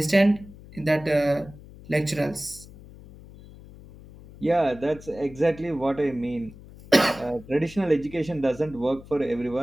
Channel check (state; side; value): noise; left; hum, 19 dB below the sound